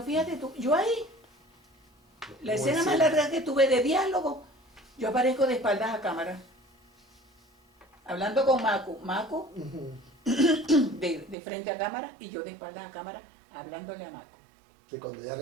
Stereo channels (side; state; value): left; drops out; at 11.4 s